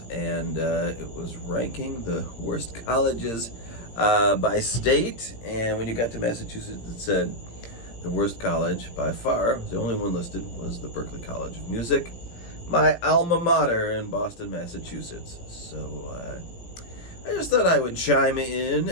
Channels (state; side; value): late; right; 17 ms